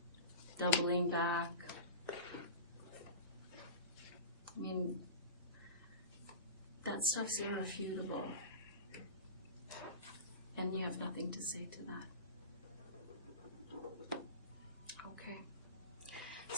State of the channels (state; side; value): inverted; both; correlation -0.31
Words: doubling back. I mean, that stuff's irrefutable. And you have nothing to say to that. Okay.